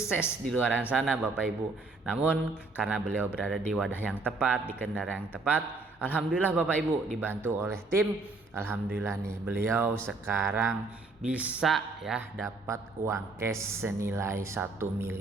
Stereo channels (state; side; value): quieter; left; 3.5 dB